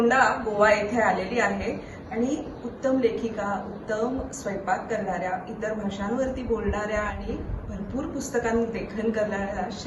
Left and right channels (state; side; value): identical; both; correlation 1.00